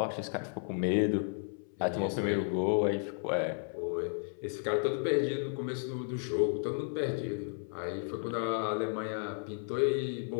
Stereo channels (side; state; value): right; silent; 56 dB below the other